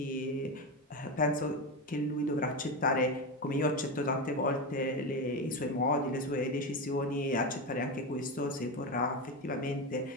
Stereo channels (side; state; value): both; normal; correlation 0.16